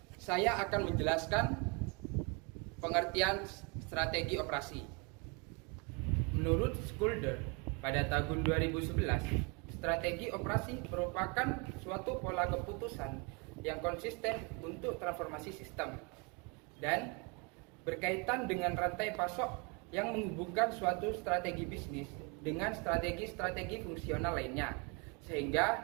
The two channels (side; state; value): left; quieter; 31.1 dB